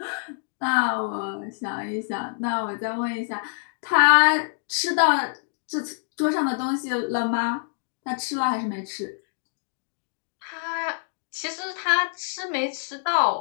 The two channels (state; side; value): silent; right; digital silence